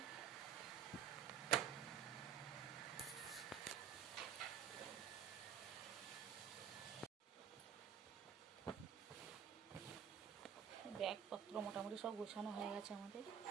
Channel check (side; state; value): left; quieter; 8.3 dB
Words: ব্যাগপত্র মোটামুটি সব গোছানো হয়ে গেছে আমাদের।